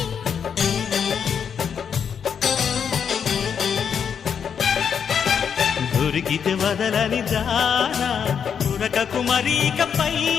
దొరికితే వదలని దానా ఉరకకు మరీక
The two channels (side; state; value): right; quieter; 7.4 dB